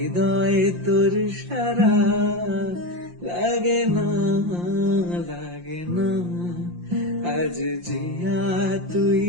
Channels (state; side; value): late; left; 5.7 ms